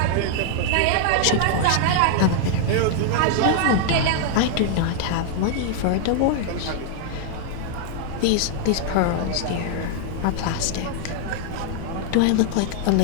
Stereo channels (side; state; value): both; different; correlation 0.00